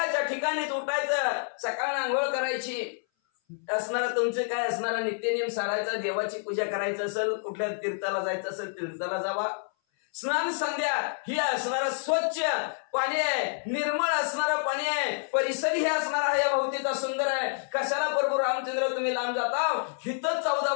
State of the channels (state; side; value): silent; right; 58 dB below the other